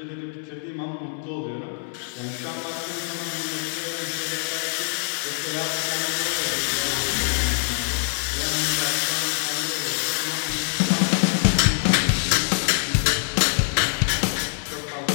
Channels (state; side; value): silent; right; 58 dB below the other